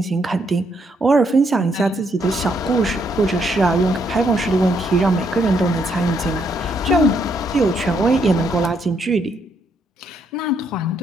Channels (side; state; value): both; normal; correlation 0.74